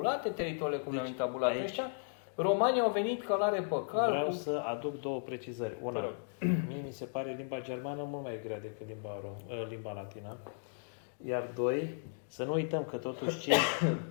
teritoriile cum le-au intabulat ăștia. Romanii au venit călare pe cal. Vreau să aduc două precizări. Una, mie mi se pare limba germană mult mai grea decât limba latină. Iar doi, să nu uităm că totuși cei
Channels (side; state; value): right; silent; digital silence